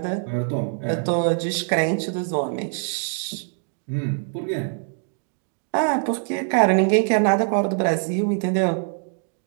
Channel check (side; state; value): left; silent; 63 dB below the other